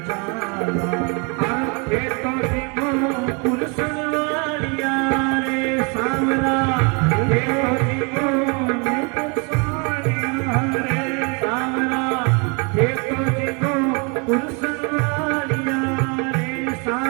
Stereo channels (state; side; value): quieter; left; 33.1 dB